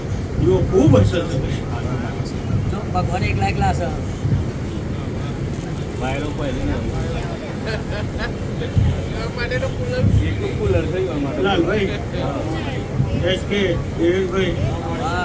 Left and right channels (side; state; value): both; identical; correlation 1.00